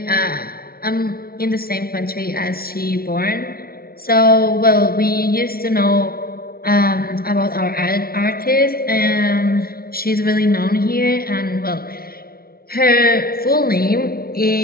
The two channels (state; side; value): late; right; 0.44 ms